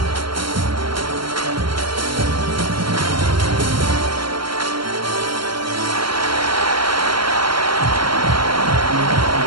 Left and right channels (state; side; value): late; left; 0.73 ms